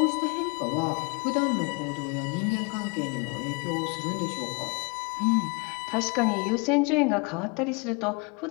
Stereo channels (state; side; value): quieter; right; 31.8 dB